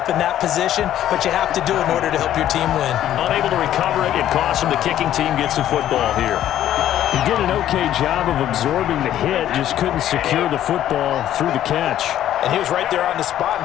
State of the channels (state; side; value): quieter; right; 11.9 dB